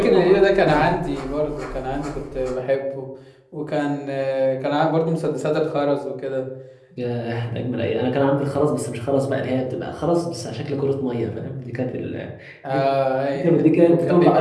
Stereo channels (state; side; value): identical; both; correlation 1.00